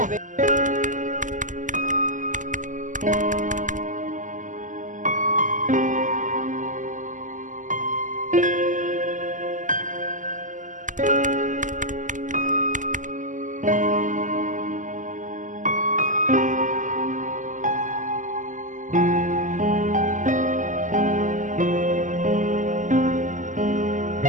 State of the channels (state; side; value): late; left; 0.37 ms